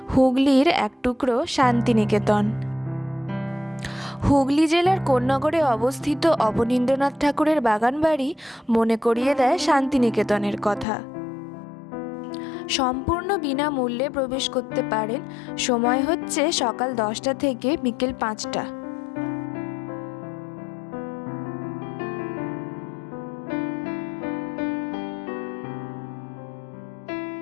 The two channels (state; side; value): drops out; right; at 10.9 s